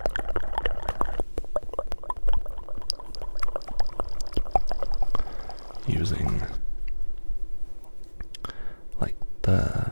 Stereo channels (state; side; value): inverted; both; correlation -1.00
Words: using like the